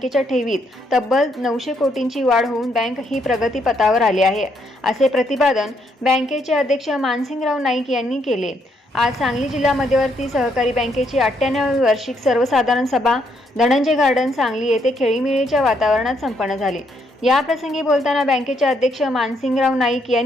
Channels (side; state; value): both; normal; correlation 0.73